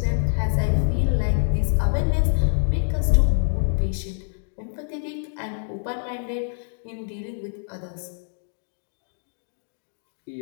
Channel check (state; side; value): silent; right; digital silence